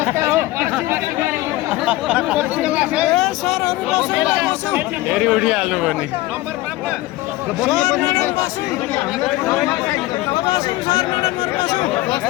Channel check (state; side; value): quieter; right; 18.0 dB